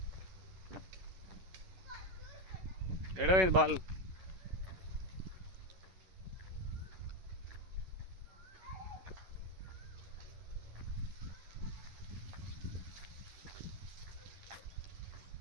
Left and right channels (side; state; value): left; late; 11 ms